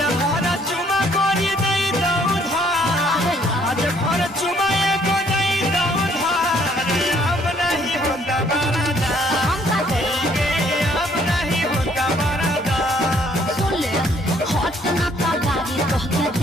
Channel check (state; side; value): normal; both; correlation 0.63